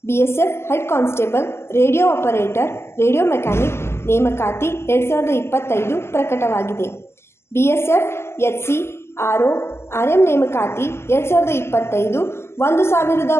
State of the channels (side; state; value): right; late; 0.12 ms